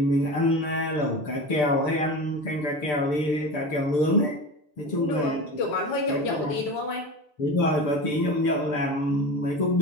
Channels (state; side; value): late; right; 6.8 ms